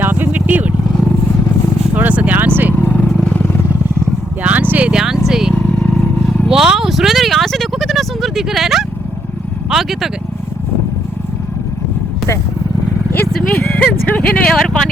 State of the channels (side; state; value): both; normal; correlation 0.74